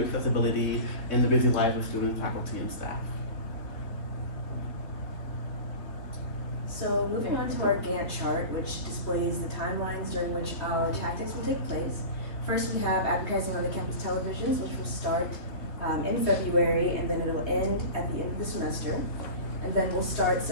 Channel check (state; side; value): late; right; 3.1 ms